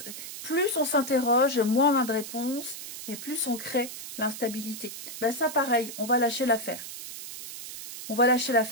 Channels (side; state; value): right; noise; hiss, 10 dB below the sound